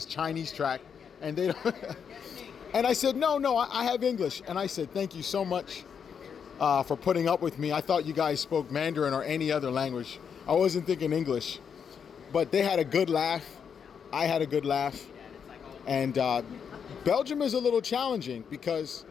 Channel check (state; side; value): quieter; right; 7.1 dB